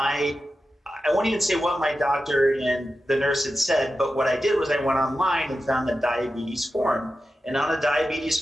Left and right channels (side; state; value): both; normal; correlation 0.92